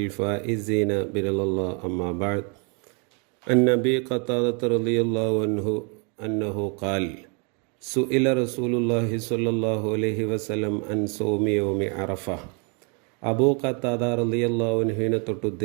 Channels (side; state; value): left; quieter; 35.3 dB